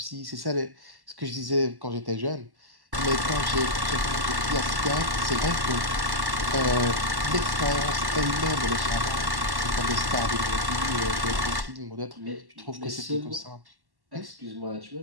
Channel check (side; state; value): left; late; 1.1 ms